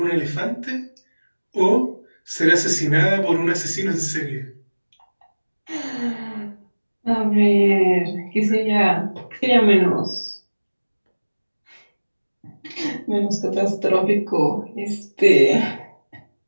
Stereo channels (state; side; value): inverted; both; correlation -1.00